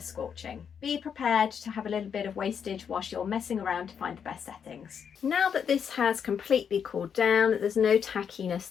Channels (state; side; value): quieter; right; 7.4 dB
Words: scorching. Be prepared to have a little bit of wastage whilst you're messing around to find the best settings. Now that this has completely cooled down, there's no tackiness